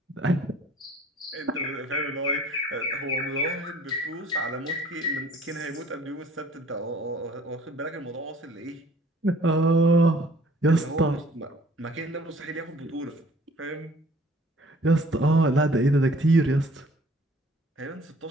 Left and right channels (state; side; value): normal; both; correlation 0.54